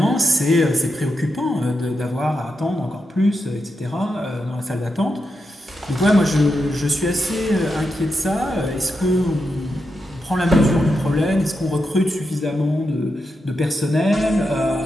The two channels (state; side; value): normal; both; correlation 0.86